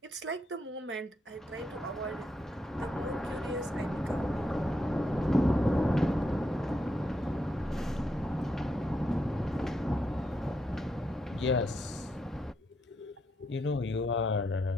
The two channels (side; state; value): both; normal; correlation 0.80